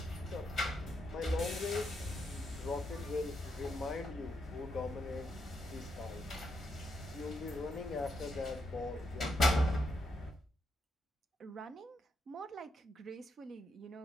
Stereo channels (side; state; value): both; normal; correlation 0.80